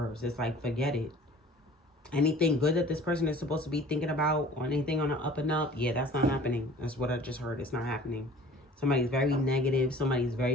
It's like forget it. Anything good that this person is supposed to be thinking about or anything on the up and up, yeah, that's not happening. That's what I just heard. It's not happening. Somebody's very negative. Somebody's very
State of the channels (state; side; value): normal; both; correlation 0.47